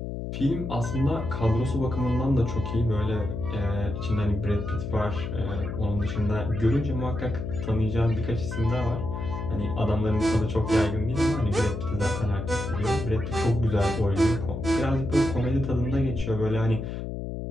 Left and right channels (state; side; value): noise; left; hum, 5 dB below the sound